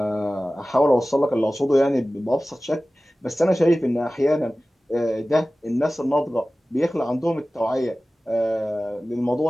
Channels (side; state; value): both; normal; correlation 0.97